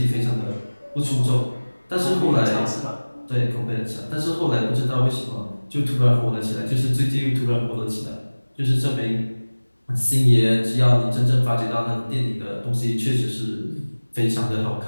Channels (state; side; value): inverted; both; correlation -1.00